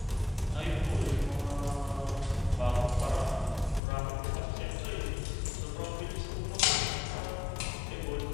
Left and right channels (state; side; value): drops out; right; at 3.8 s